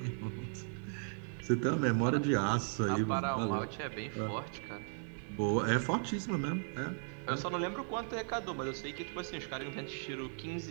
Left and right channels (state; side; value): silent; left; 53 dB below the other